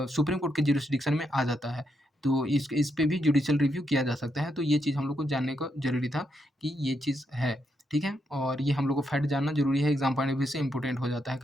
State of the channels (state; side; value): normal; both; correlation 0.80